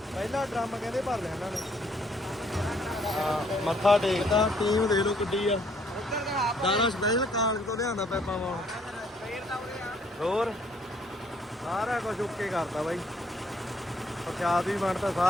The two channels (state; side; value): normal; both; correlation 0.66